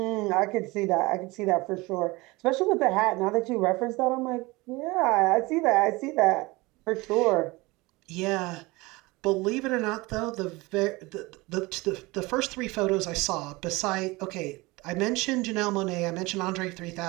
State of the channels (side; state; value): left; quieter; 22.8 dB